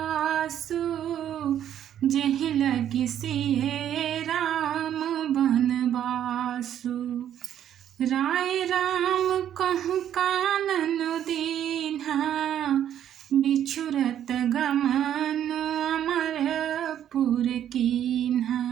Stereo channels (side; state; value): left; quieter; 10.4 dB